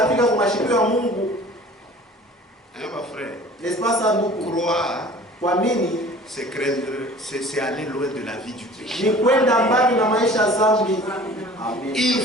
Ma frère, croire, c'est craindre, c'est aller loin de la vie du péché. Ils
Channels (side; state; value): both; normal; correlation 0.46